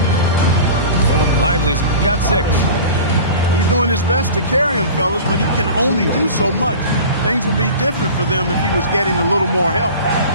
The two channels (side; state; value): both; inverted; correlation -0.37